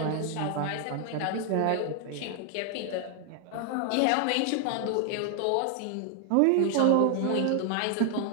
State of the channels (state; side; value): different; both; correlation 0.00